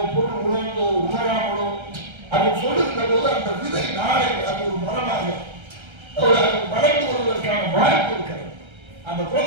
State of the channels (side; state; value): left; late; 1.3 ms